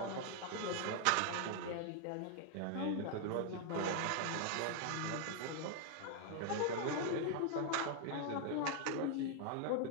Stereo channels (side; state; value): both; different; correlation 0.00